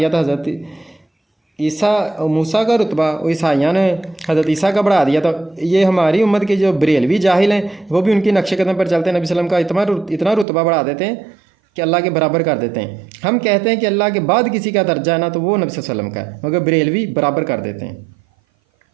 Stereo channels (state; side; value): drops out; left; at 10.5 s